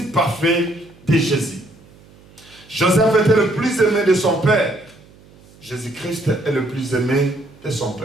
parfait de Jésus. Joseph était le plus aimé de son père. Jésus-Christ est le plus aimé de son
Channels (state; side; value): noise; right; hum, 26 dB below the sound